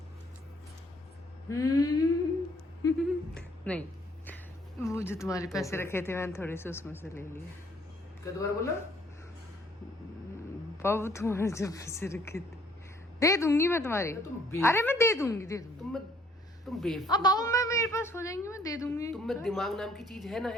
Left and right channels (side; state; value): both; normal; correlation 0.63